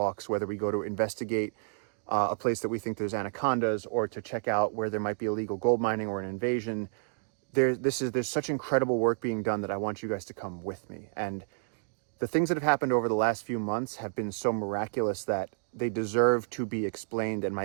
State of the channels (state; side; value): silent; left; digital silence